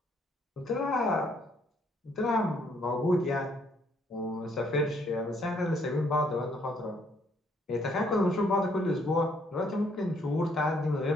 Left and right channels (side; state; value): both; normal; correlation 0.68